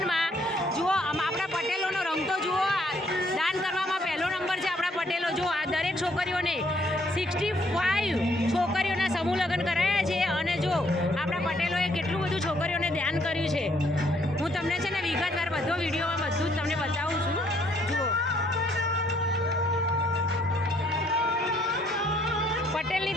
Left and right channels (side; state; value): both; normal; correlation 0.67